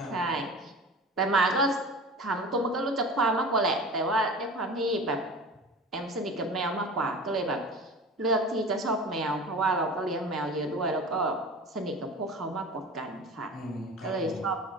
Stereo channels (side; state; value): both; normal; correlation 0.36